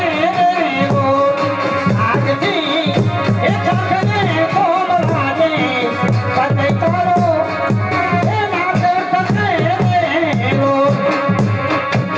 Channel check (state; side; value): identical; both; correlation 1.00